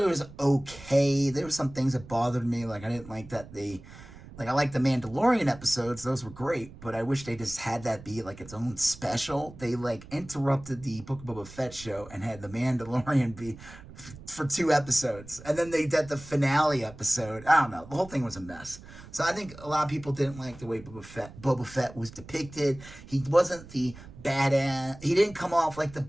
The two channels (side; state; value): right; noise; rumble, 17 dB below the sound